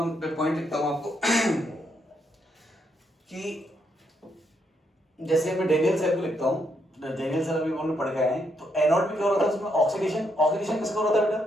पॉइंट लिखता हूं आपको कि जैसे मैं डेनियल सेल को लिखता हूं, डेनियल सेल अभी हमने पढ़ के आए हैं, तो एनोड में क्या हो रहा था, उसमें ऑक्सीडेशन, ऑक्सीडेशन किसका हो रहा था बेटा,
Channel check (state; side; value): normal; both; correlation 0.77